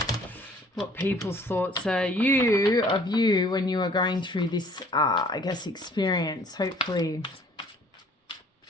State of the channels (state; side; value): normal; both; correlation 0.55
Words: what people's thoughts are of you when you are going through this, I guess, experience. Hopefully,